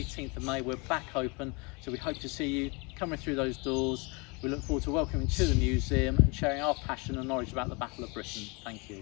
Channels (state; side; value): quieter; right; 29.6 dB